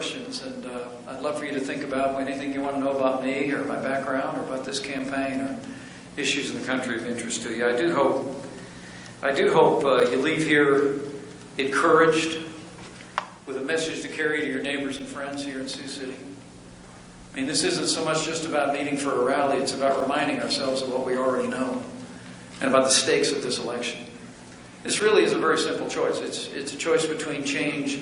and I'd love for you to think about anything you want to know about me or my background or about this campaign or issues in the country of interest to you. I do hope you leave here encouraged with a message to carry to your neighbors and friends here in Sioux City. I mean, this isn't so much just about meeting for a rally, it's about reminding ourselves of what we already know and about the stakes of this election. This really is a very simple choice. It's a choice between change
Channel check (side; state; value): both; identical; correlation 1.00